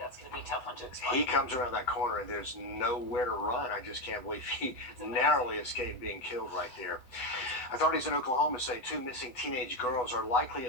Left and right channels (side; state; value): right; late; 8.0 ms